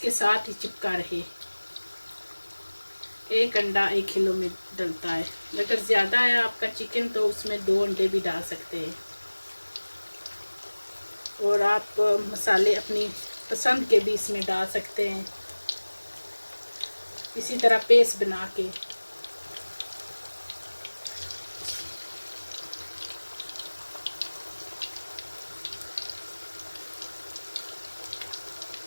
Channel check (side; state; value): both; inverted; correlation -1.00